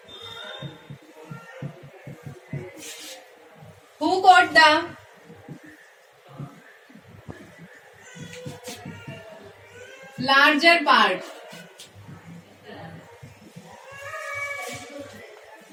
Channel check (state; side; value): identical; both; correlation 1.00